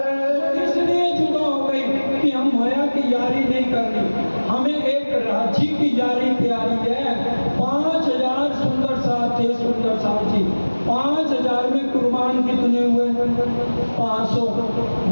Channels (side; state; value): both; inverted; correlation -1.00